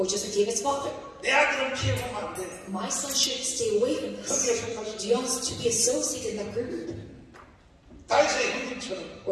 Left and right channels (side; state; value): both; identical; correlation 1.00